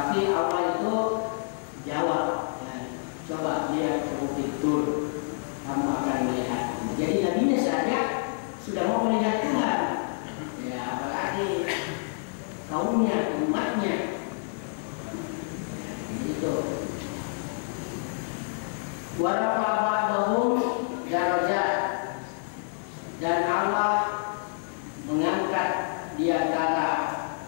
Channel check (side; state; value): right; silent; digital silence